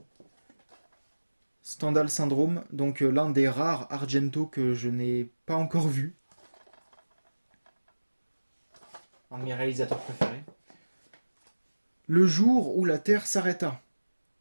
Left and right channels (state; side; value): inverted; both; correlation -1.00